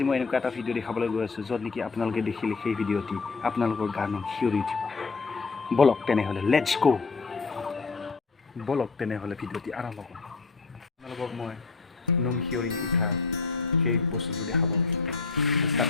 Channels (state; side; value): quieter; right; 4.4 dB